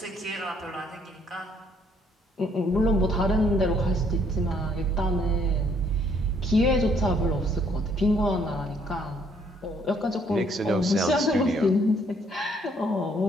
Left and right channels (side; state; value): both; normal; correlation 0.66